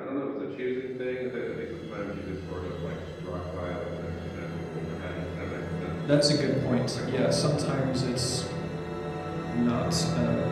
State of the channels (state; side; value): identical; both; correlation 1.00